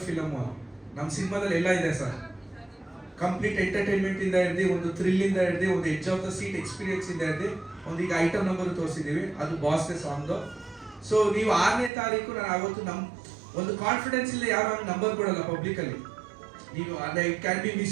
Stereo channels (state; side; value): drops out; left; at 11.9 s